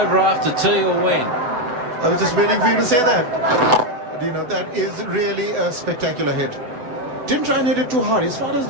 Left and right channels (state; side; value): late; left; 8.0 ms